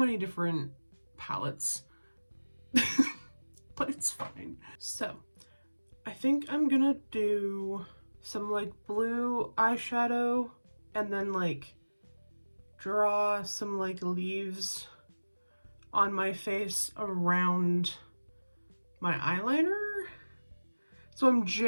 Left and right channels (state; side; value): inverted; both; correlation -1.00